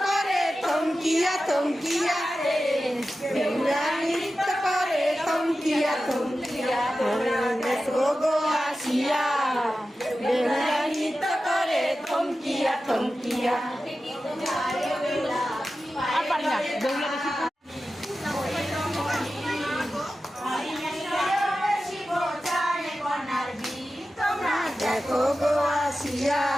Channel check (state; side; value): normal; both; correlation 0.93